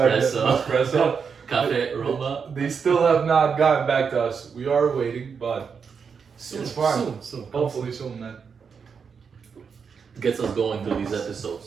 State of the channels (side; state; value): left; quieter; 6.1 dB